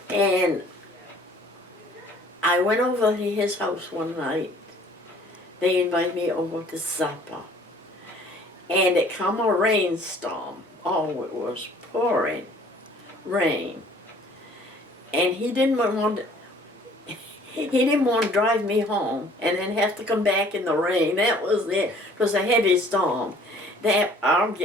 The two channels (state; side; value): normal; both; correlation 0.54